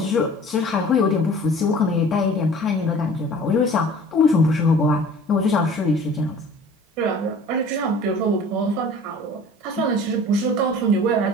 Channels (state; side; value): normal; both; correlation 0.46